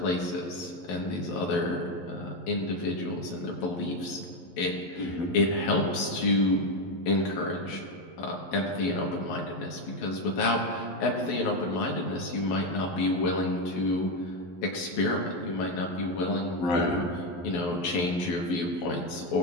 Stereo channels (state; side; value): late; right; 11 ms